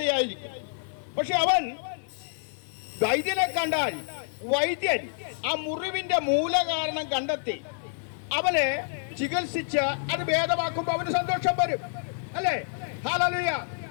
പക്ഷെ അവൻ വൈദ്യനെ കണ്ടാൽ വൈദ്യൻ ആ മുറിവിന്റെ മൂലകാരണം കണ്ടെത്തി അവനെ ചികിത്സിച്ച് അത് ഭേദമാക്കുമ്പോൾ അവന് സന്തോഷം വരും, അല്ലേ? ഹല്ലേലൂയ.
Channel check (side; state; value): right; silent; digital silence